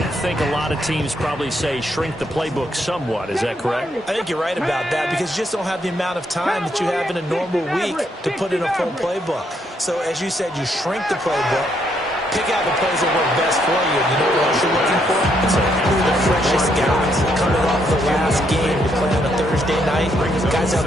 think a lot of teams probably say shrink the playbook somewhat. Is that correct? I think you're right about that because you just don't have the amount of time that you have in a normal week to put in a full playbook. So, as you said, you shrink the playbook. Pick out the plays that work best for you. You know what else you're looking for? It's the freshest guys coming off the last game to play on a Thursday night. Guys have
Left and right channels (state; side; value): normal; both; correlation 0.74